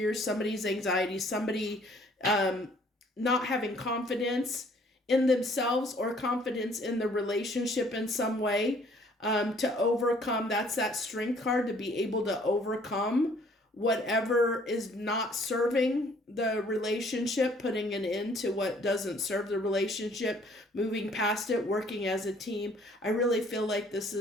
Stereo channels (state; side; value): normal; both; correlation 0.59